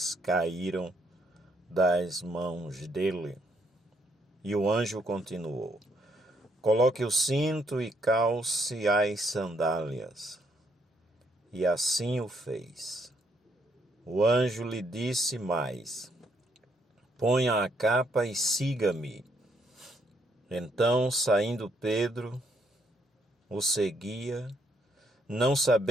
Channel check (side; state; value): both; normal; correlation 0.72